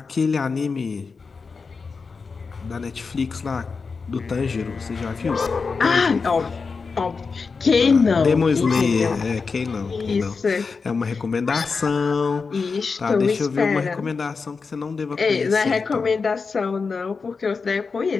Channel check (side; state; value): right; quieter; 4.8 dB